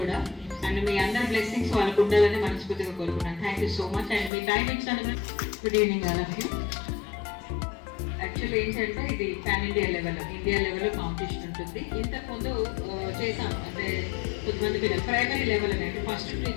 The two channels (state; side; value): drops out; right; at 4.3 s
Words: కూడా. అండ్ మీ అందరి బ్లెస్సింగ్స్ వాళ్ళకు ఉండాలని మనస్ఫూర్తిగా కోరుకున్నాను. Thank you so much. And మీ టైం ఇచ్చాను. Good evening all of you. Actually ఏంటంటే ఇది పాన్ ఇండియా లెవెల్లో కాంపిటీషన్ ఉంటుంది. ఇంతకుముందు చేసాం, అంటే కొంతమంది పిల్లలు ప్రైమరీ లెవెల్ అనేది ఫస్ట్